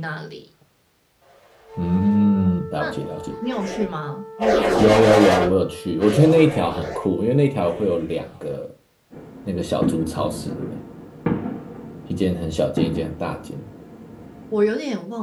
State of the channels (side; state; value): both; identical; correlation 1.00